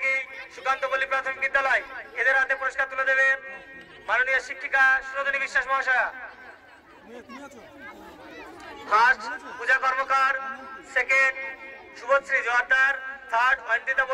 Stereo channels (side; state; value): both; identical; correlation 1.00